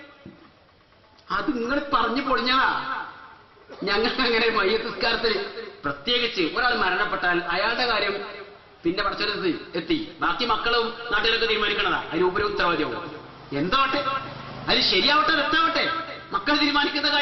അത് നിങ്ങൾ പറഞ്ഞു പൊളിഞ്ഞതാ. ഞങ്ങൾക്ക് അങ്ങനെ മയ്യത്തസ്കാരത്തിൽ പ്രത്യേകിച്ച് ഒരാൾ മരണപ്പെട്ടാൽ അയാളുടെ കാര്യം പിന്നെ പടച്ചെടുത്ത് എത്തി ബാക്കി മക്കളും നാട്ടുകാരൊക്കെ തീരുമാനിക്കണതാ. അതിന് ഉപരി ഉത്തരവാദിയാവും. എന്തോട്ടെ, അത് ശരിയാവട്ടെ തെറ്റാവട്ടെ, മക്കൾ തീരുമാനിക്കുന്ന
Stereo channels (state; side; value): identical; both; correlation 1.00